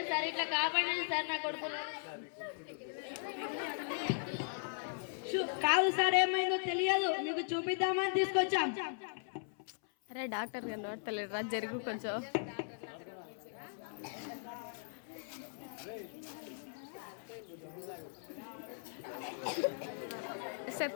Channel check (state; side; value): silent; right; 52 dB below the other